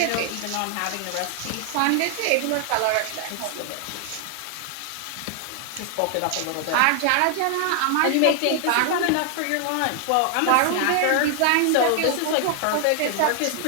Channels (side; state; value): both; different; correlation 0.00